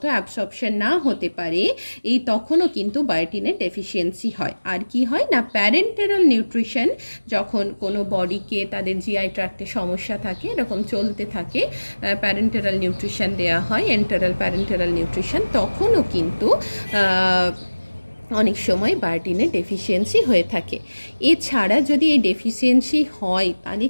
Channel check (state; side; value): inverted; both; correlation -1.00